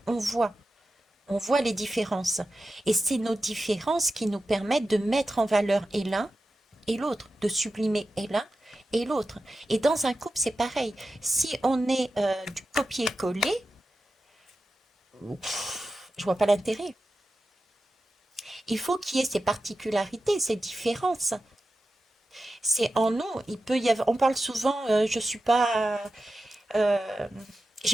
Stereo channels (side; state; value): both; normal; correlation 0.92